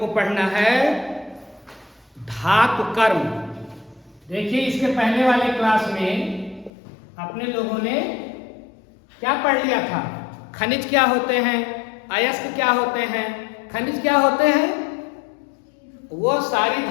पढ़ना है धातु कर्म। देखिए इसके पहले वाले क्लास में अपने लोगों ने क्या पढ़ लिया था? खनिज क्या होते हैं, अयस्क क्या होते हैं, खनिज क्या होते हैं। वो सारी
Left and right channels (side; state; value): right; drops out; at 6.7 s